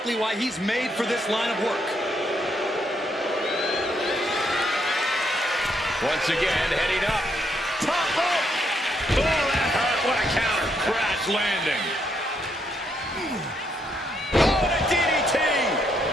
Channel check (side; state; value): both; normal; correlation 0.75